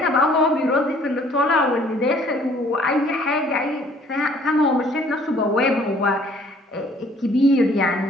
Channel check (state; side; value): normal; both; correlation 0.58